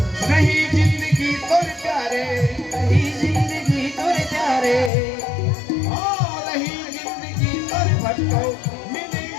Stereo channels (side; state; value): right; drops out; at 4.9 s